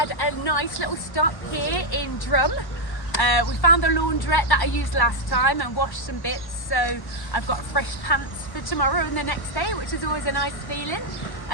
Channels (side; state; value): right; late; 1.1 ms